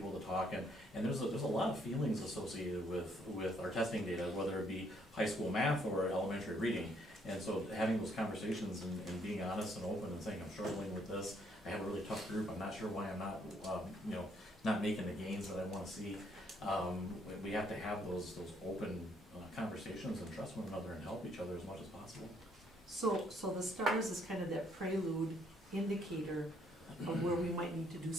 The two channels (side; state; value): both; normal; correlation 0.68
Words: to talk, and there's a lot of feelings associated with our testing data, whether it be high school math or elementary reading. And so having those conversations and being honest and open and saying, I'm struggling with this, I have a really tough group, I'm not sure why I'm not, not making the gains that I wanna see. We have to have those open conversations and trust one another and help each other as much as possible. So the STARS is kind of that prelude indicator of where we might need to do